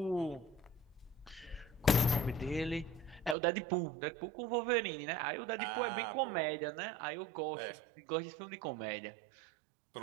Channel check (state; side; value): drops out; left; at 3.4 s